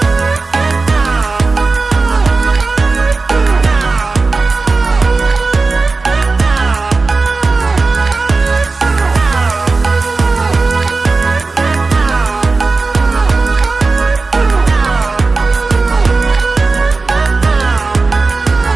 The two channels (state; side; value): quieter; left; 3.9 dB